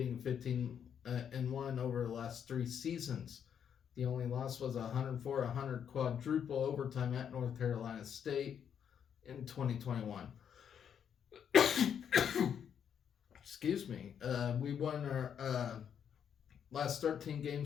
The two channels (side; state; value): right; quieter; 8.2 dB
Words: 15-1 over the last 3 seasons. The only loss was a 104-100 quadruple overtime at North Carolina State in 2021. Excuse me. We won our last 13